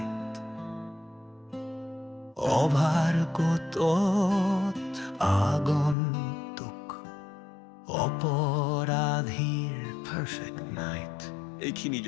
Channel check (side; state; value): right; drops out; at 6.0 s